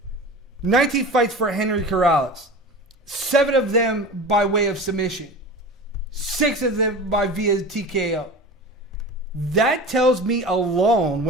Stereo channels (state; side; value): normal; both; correlation 0.33